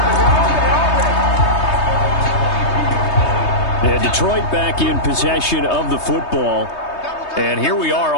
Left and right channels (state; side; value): late; right; 3.2 ms